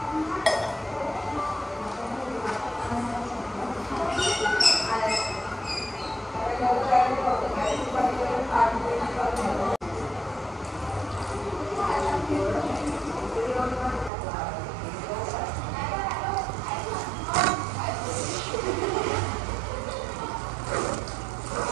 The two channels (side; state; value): left; drops out; at 14.1 s